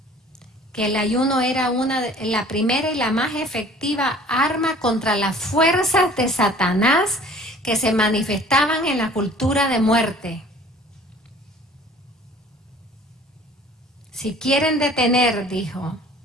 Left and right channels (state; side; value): normal; both; correlation 0.49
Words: Que el ayuno era la primera y la más efectiva arma contra las fuerzas de Satanás que se manifestaban en la cultura de muerte. Si quieren detener, dijo,